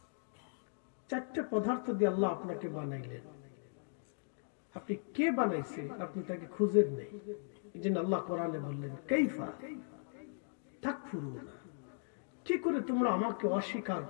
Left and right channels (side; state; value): right; silent; digital silence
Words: চারটে পদার্থ দিয়ে আল্লাহ আপনাকে বানাইলেন, আপনি কে বানাইছে আপনি তাকে খুঁজেন নেই। এই জন্য আল্লাহ কোরআনে বললেন কাইফা তাকফুরুনা, কি করে তোমরা আমাকে অস্বীকার